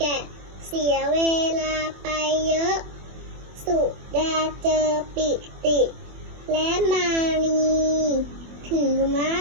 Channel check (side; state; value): left; late; 24 ms